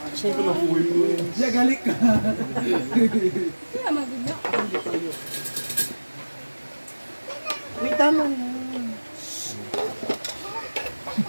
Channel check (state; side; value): inverted; both; correlation -1.00